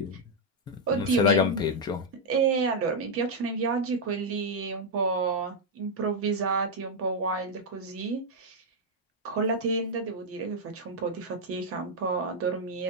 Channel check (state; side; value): normal; both; correlation -0.01